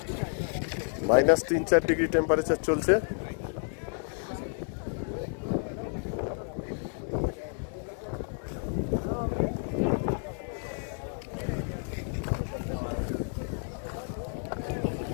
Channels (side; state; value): right; silent; 57 dB below the other